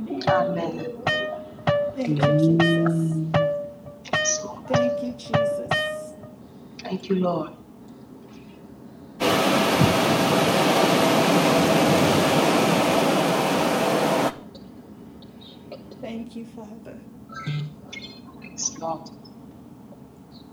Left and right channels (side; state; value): both; identical; correlation 1.00